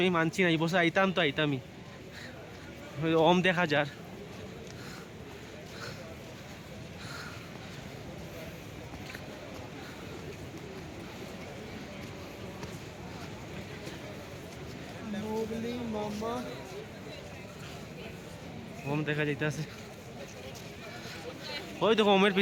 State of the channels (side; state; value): both; identical; correlation 1.00